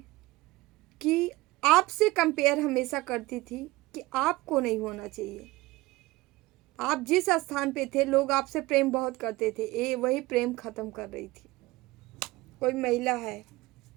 कि आपसे कंपेयर हमेशा करती थी कि आपको नहीं होना चाहिए। आप जिस स्थान पे थे, लोग आपसे प्रेम बहुत करते थे, ये वही प्रेम खत्म कर रही थी। कोई महिला है,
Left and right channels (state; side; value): quieter; left; 19.8 dB